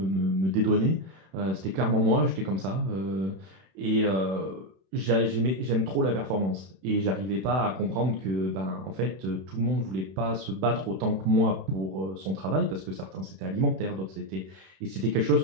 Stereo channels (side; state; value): left; late; 31 ms